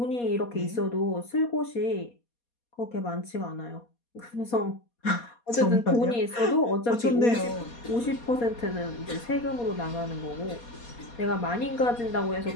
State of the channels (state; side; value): late; right; 4.2 ms